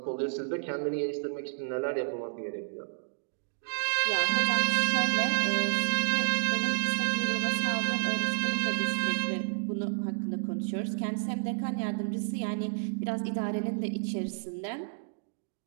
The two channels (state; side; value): silent; left; digital silence